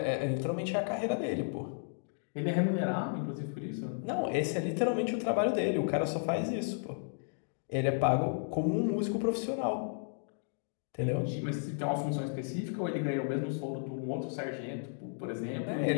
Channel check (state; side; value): silent; right; digital silence